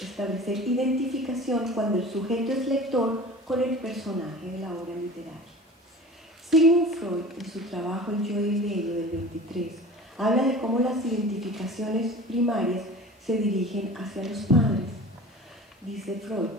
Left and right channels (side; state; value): both; normal; correlation 0.40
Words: identificación cuando el sujeto es lector con el personaje de la obra literaria. Sigmund Freud, en su trabajo El yo y el ello del 23, habla de cómo las identificaciones primarias se dirigen hacia los padres. Dice Freud,